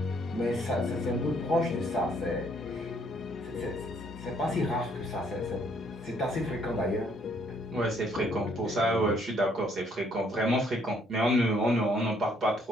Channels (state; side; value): normal; both; correlation 0.67